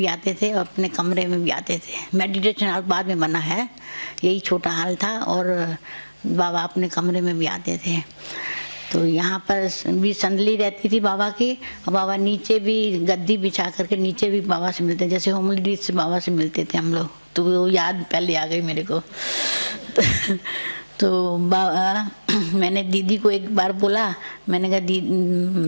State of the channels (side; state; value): both; inverted; correlation -1.00